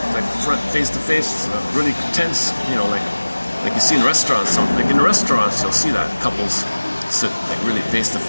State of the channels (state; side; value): inverted; both; correlation -1.00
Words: like face to face, really tense, like you see in restaurants. Like in restaurants, you'll see that couples sit like really face to